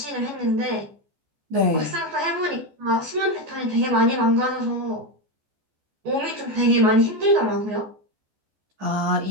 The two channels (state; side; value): late; left; 14 ms